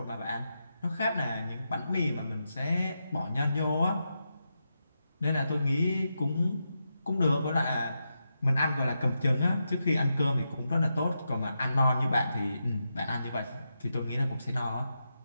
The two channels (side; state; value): both; inverted; correlation -0.86